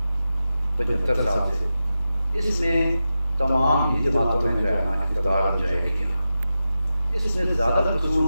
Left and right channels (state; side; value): inverted; both; correlation -0.92